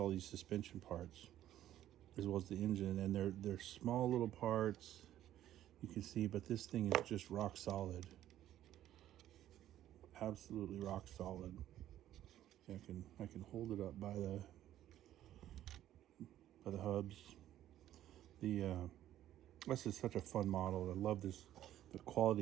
these suspension parts, as well as the engine, and they're small little parts, you can see, but this thing is just rock solid, absolutely rock solid. See, I can hold it up by the hubs. This is such a fun model. I love this. The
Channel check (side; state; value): left; quieter; 12.5 dB